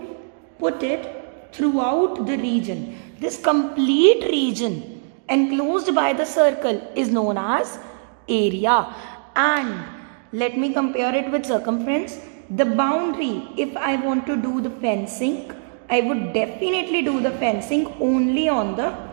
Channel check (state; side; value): silent; left; digital silence